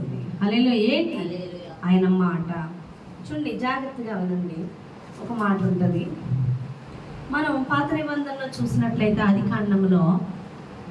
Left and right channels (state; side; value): identical; both; correlation 1.00